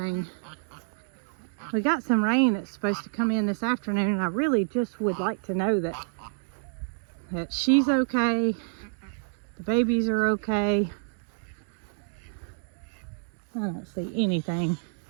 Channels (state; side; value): silent; left; digital silence